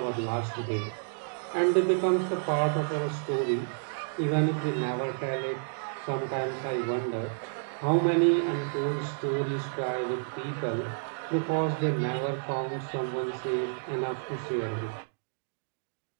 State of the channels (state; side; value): silent; left; digital silence